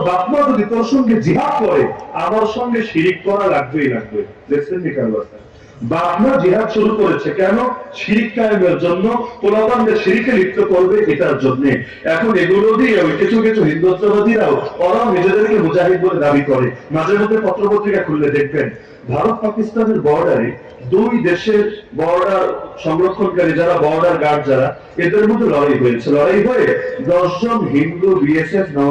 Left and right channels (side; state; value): both; identical; correlation 1.00